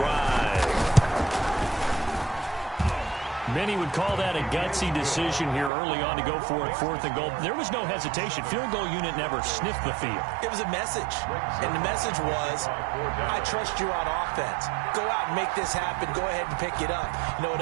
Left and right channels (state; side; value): drops out; left; at 5.7 s